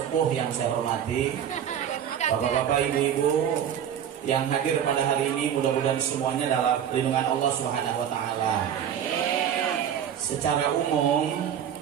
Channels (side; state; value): left; quieter; 9.2 dB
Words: yang saya hormati, Bapak-bapak, ibu-ibu yang hadir pada hari ini, mudah-mudahan semuanya dalam lindungan Allah Subhanahu wa taala. Secara umum